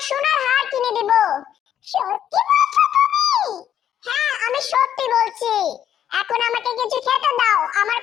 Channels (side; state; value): right; quieter; 10.1 dB